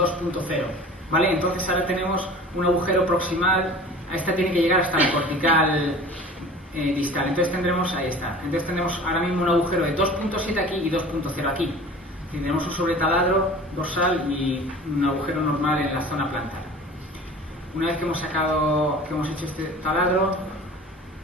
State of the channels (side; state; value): both; normal; correlation 0.41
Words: ¿vale? Entonces ahora tenemos un agujero proximal, esta tiene que llegar hasta la cortical distal, entonces tendremos, ahí está, entonces tendremos ahora mismo un agujero de 2.7 aquí y 2.0 aquí. Tendremos un sobretaladro dorsal y un agujero normal en la zona plantar. Una vez que hemos hecho este taladro,